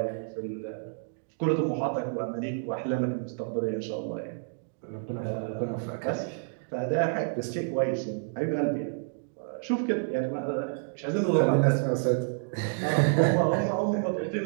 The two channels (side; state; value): left; silent; digital silence